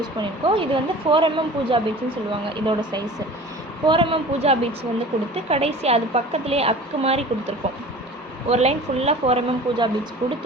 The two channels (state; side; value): normal; both; correlation 0.41